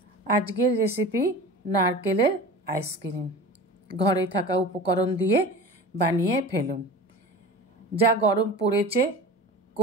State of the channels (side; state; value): both; normal; correlation 0.35